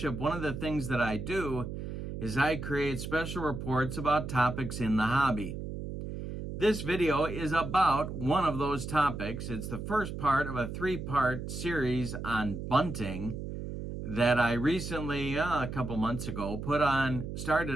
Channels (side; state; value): right; noise; hum, 7 dB below the sound